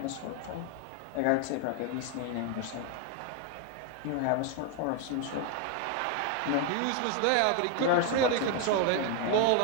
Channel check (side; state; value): both; different; correlation 0.01